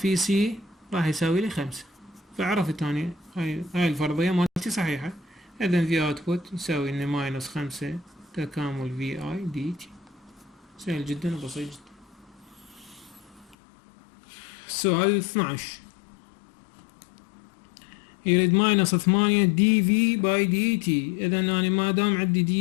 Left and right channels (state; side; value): drops out; right; at 13.6 s